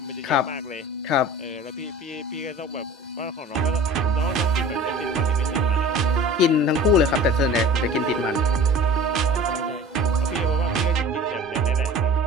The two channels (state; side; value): normal; both; correlation 0.41